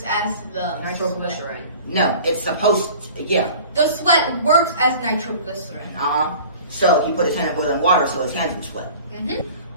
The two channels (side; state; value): both; inverted; correlation -0.44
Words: as the Nitroglycerin. No, it's supposed to, yeah. The sweat works as nitroglycerin. So he put his hand in boiling water so his hands would sweat.